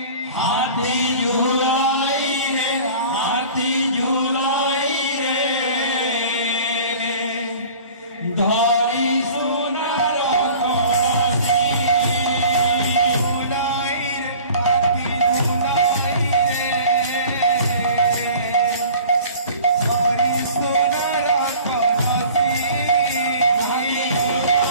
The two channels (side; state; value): both; inverted; correlation -0.44